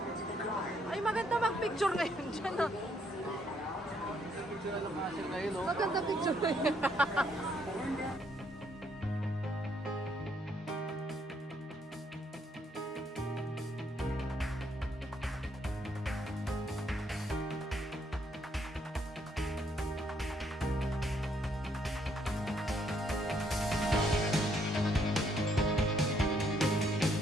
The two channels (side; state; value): both; normal; correlation 0.71